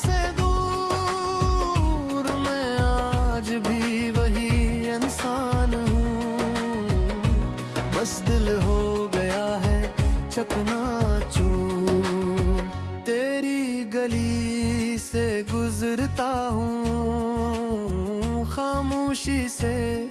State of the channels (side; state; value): both; identical; correlation 1.00